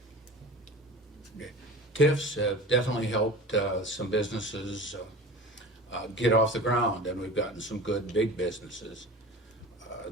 TIFs have definitely helped some businesses get off the ground, and we've gotten some good big businesses.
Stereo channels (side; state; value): both; normal; correlation 0.36